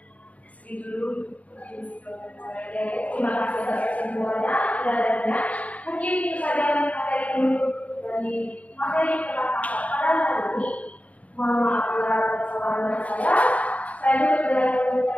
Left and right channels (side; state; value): right; late; 0.069 ms